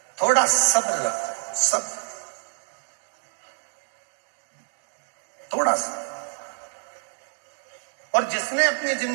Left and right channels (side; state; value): left; silent; digital silence